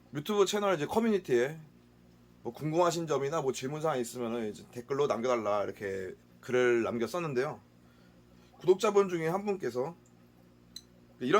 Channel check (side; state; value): both; identical; correlation 1.00